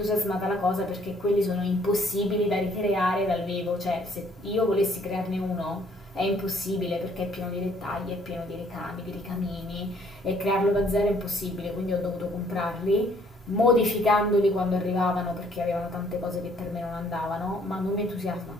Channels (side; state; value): both; normal; correlation 0.63